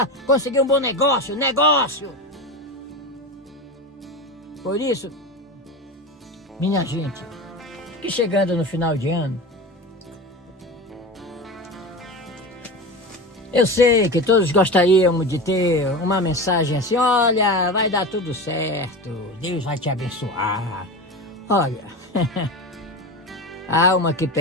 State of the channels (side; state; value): both; normal; correlation 0.26